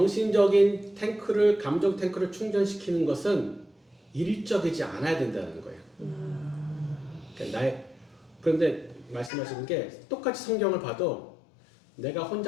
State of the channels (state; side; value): drops out; right; at 9.3 s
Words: 탱크를 감정 탱크를 충전시키는 것은 일적이지 않아야 된다는 거예요. 그러니까 그런데 말씀하시는 게 똑같이 성경을 봐도 내가